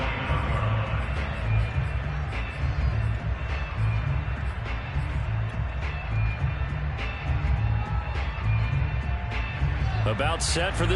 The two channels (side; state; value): both; identical; correlation 1.00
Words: About set for